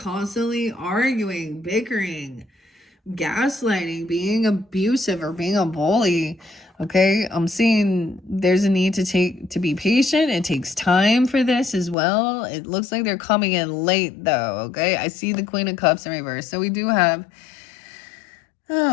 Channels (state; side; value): drops out; right; at 12.0 s